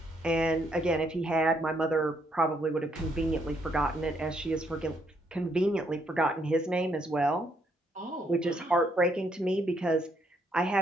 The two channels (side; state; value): both; normal; correlation 0.72